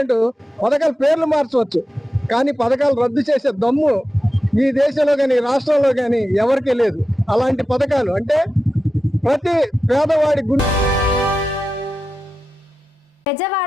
పథకాల పేర్లు మార్చవచ్చు, కానీ పథకాలు రద్దు చేసే దమ్ము ఈ దేశంలో కానీ రాష్ట్రంలో కానీ ఎవరికీ లేదు. అలాంటి పథకాలు అంటే ప్రతి పేదవాడి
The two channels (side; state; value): both; normal; correlation 0.92